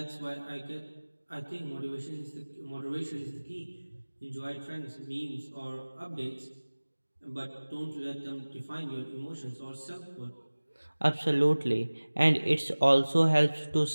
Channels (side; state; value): both; inverted; correlation -1.00